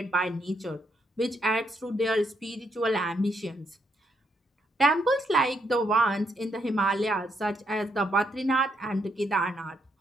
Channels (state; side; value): normal; both; correlation 0.76